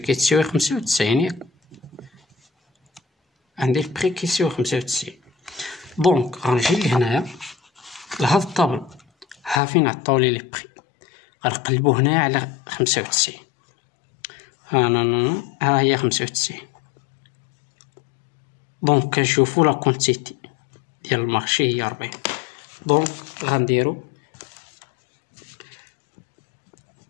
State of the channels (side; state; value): right; drops out; at 9.6 s